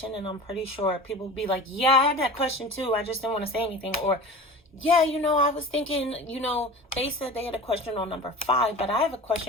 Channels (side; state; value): both; normal; correlation 0.36